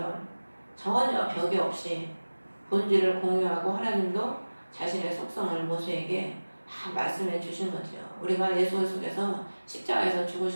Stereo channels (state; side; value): inverted; both; correlation -1.00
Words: 전혀 벽이 없이 본질을 공유하고 하나님도 자신의 속성을 모세에게 다 말씀해 주신 거죠. 우리가 예수 속에서 십자가에서